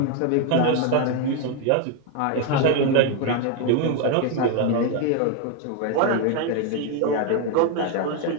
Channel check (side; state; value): both; different; correlation 0.01